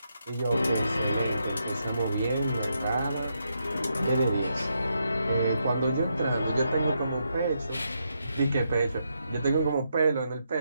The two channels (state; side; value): inverted; both; correlation -0.81